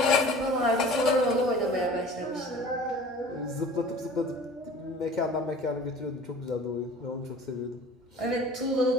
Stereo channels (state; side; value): normal; both; correlation 0.44